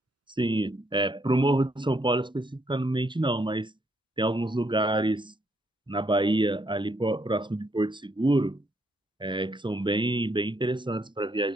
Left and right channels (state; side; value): normal; both; correlation 0.73